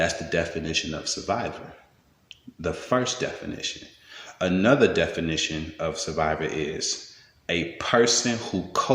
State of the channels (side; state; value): both; identical; correlation 1.00